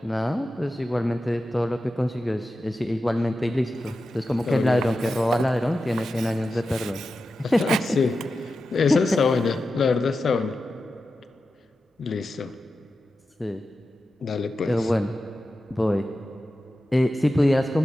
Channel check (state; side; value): normal; both; correlation 0.92